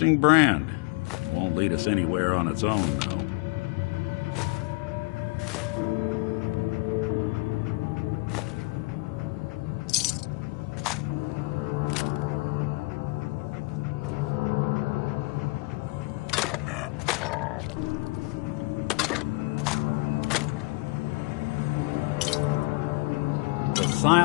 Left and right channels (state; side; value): quieter; right; 25.8 dB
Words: brand. Won't lead us anywhere on its own, though.